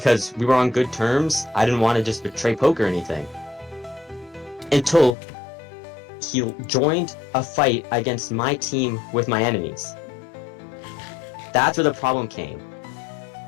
we were on good terms, I didn't want to just betray Poke or anything. Until he joined a fight against my team with my enemies. That's where the problem came.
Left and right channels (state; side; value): drops out; right; at 5.2 s